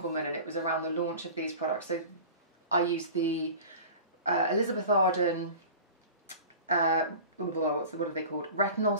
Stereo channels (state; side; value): inverted; both; correlation -0.38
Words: and it was around the launch of these products, so I used the Elizabeth Arden, what are they called? Retinol